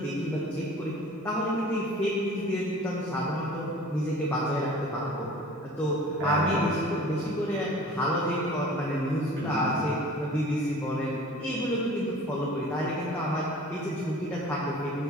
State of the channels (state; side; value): normal; both; correlation 0.45